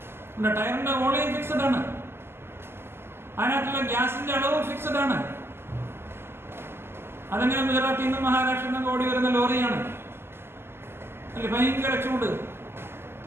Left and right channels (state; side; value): late; left; 0.12 ms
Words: ടയറിന്റെ വോളിയം ഫിക്സഡ് ആണ്, അതിനകത്തുള്ള ഗ്യാസിന്റെ അളവ് ഫിക്സഡ് ആണ്. അതെങ്ങനെ ഗുജറാത്തിൽ നിന്നും മഹാരാഷ്ട്രയിൽ നിന്നും ഓടി വരുന്ന ലോറിയാണ് അല്ലെ? ഭയങ്കര ചൂട്,